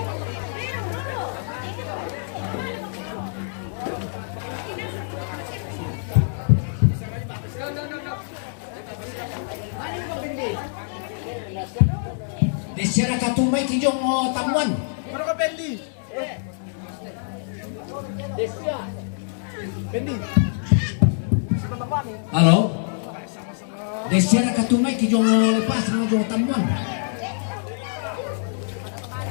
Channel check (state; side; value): silent; right; digital silence